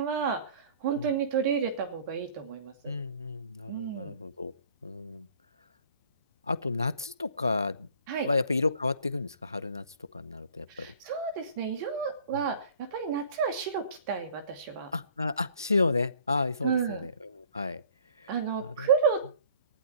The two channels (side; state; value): both; inverted; correlation -0.53